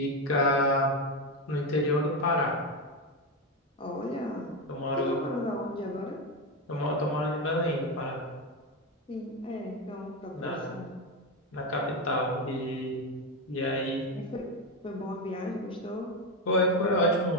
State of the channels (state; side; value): normal; both; correlation 0.12